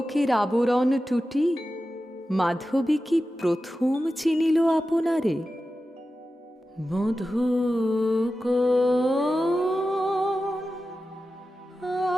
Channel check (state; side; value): normal; both; correlation 0.93